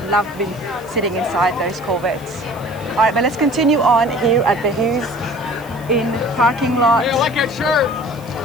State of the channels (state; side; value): noise; right; hiss, 24 dB below the sound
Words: love being sitting inside those Corvettes. All right, but let's continue on here at the Hughes in parking lot. Hey, I like that shirt.